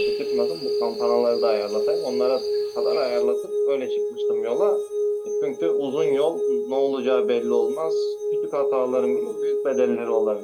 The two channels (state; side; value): identical; both; correlation 1.00